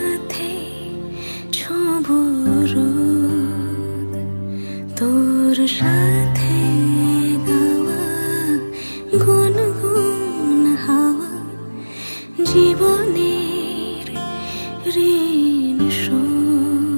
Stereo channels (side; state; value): both; inverted; correlation -1.00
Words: ছোঁব রোদ, তোর সাথে গাওয়া গুনগুন হাওয়া জীবনের ঋণ